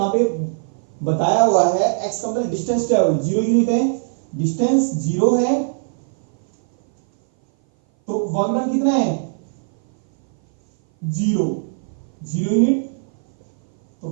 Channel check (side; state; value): left; silent; 58 dB below the other